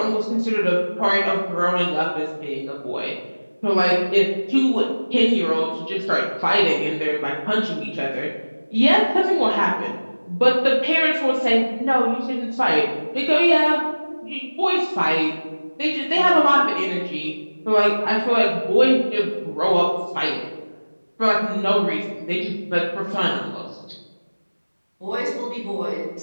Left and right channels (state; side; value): inverted; both; correlation -1.00